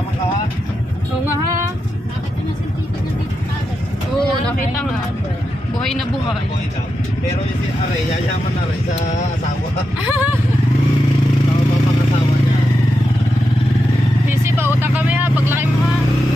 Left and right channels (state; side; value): normal; both; correlation 0.87